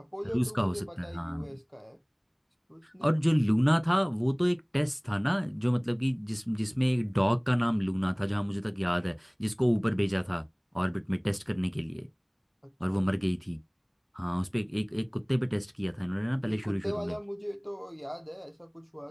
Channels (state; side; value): identical; both; correlation 1.00